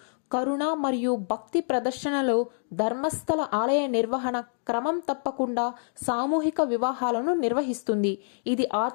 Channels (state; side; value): silent; right; digital silence